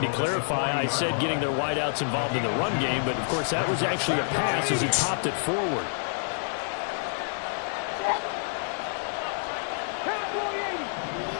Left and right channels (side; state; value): right; silent; digital silence